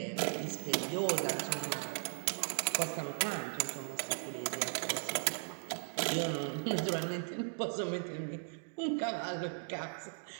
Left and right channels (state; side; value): silent; left; 53 dB below the other